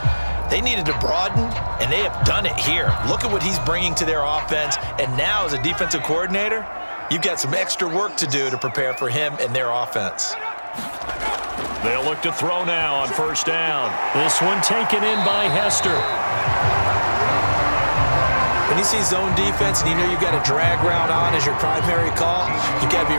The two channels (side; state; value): both; inverted; correlation -1.00